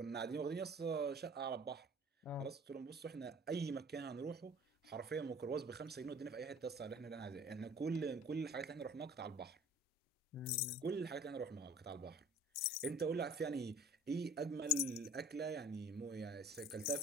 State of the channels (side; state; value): both; normal; correlation 0.48